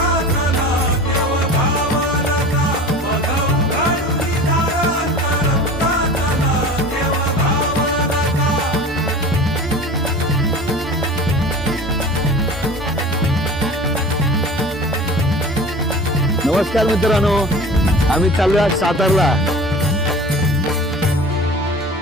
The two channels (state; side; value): normal; both; correlation 0.38